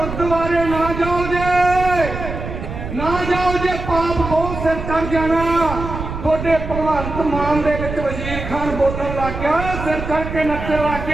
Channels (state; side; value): noise; right; rumble, 7 dB below the sound